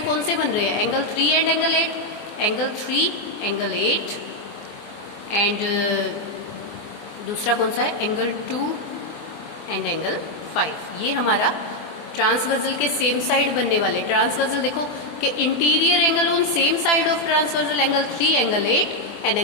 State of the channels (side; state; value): right; late; 24 ms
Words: कौन से बन रहे हैं? Angle 3 and angle 8, angle 3 angle 8 and दूसरा कौन सा है? Angle 2 and angle 5। ये हमारा ट्रांसवर्सल के सेम साइड बनने वाले। ट्रांसवर्सल देखो कि interior angle on same side of transversal angle 3 angle 8 and